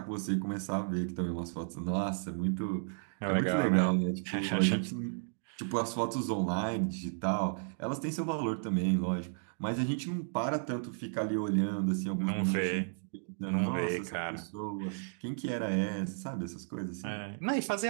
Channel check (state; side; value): silent; left; digital silence